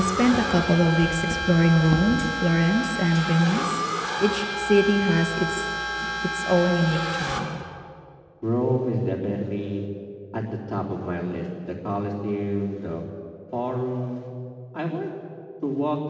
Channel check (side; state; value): both; identical; correlation 1.00